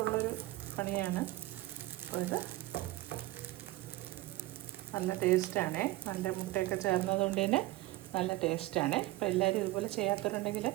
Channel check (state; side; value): quieter; left; 18.4 dB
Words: ഉള്ളൊരു പണിയാണ്. അപ്പോൾ ഇത് നല്ല ടേസ്റ്റാണ്. നല്ല മുട്ടയൊക്കെ ചേർന്നത് കൊണ്ട് തന്നെ നല്ല ടേസ്റ്റാണ്. അപ്പോൾ എല്ലാവരും ഇതുപോലെ ചെയ്യാത്തവരുണ്ടെങ്കിൽ